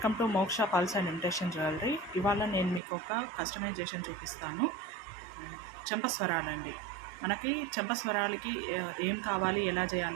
టు మోక్ష పల్స్ అండ్ ఇమిటేషన్ జ్యువెలరీ. ఇవాళ నేను మీకు ఒక కస్టమైజేషన్ చూపిస్తాను. చెంపస్వరాలండి. మనకి చెంపస్వరాలకి ఏం కావాలి, ఎలా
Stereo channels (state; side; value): drops out; left; at 2.8 s